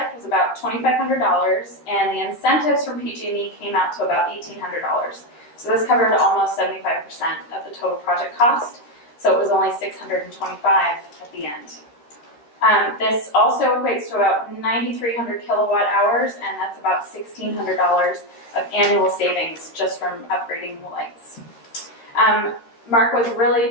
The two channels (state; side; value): late; right; 13 ms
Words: was about $2,500, and the incentives from PG&E came out to about $1,800. So this covered almost 75% of the total project cost, so it was only $625 at the end. This also equates to about 9,300 kilowatt hours, and that's about $1,600 of annual savings just from upgrading the lights. Mark was